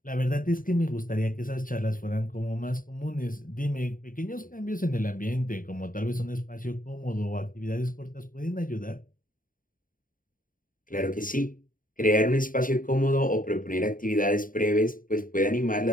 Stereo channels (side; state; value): right; late; 0.40 ms